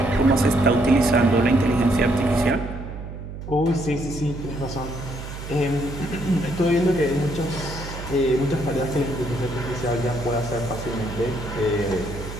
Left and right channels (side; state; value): right; noise; hum, 10 dB below the sound